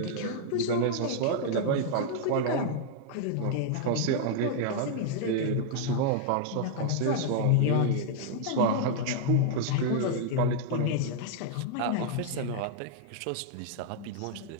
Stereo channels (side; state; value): both; different; correlation -0.01